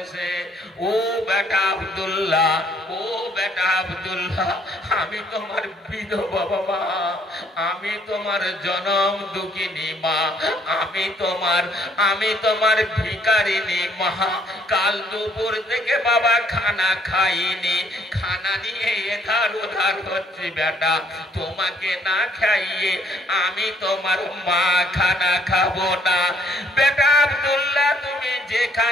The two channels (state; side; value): normal; both; correlation 0.64